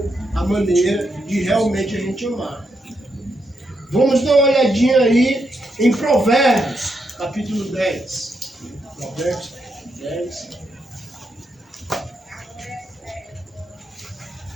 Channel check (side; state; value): both; normal; correlation 0.81